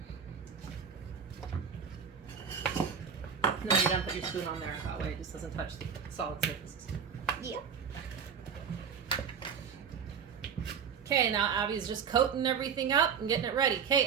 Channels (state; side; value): quieter; left; 6.9 dB